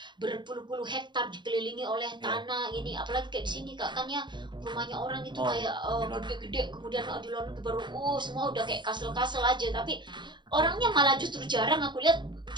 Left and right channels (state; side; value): late; left; 0.22 ms